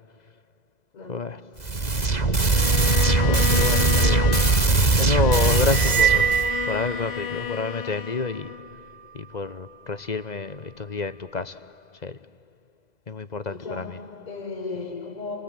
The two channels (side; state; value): right; late; 2.0 ms